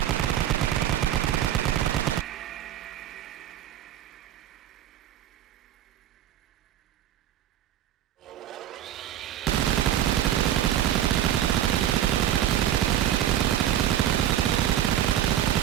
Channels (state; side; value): quieter; left; 11.3 dB